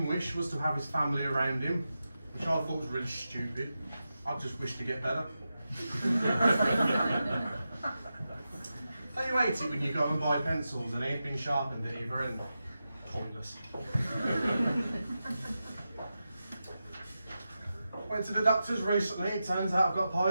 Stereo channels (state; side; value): inverted; both; correlation -0.91